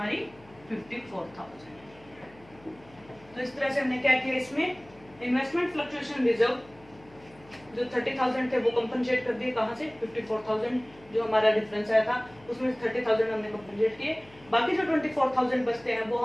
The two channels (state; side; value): noise; left; hum, 25 dB below the sound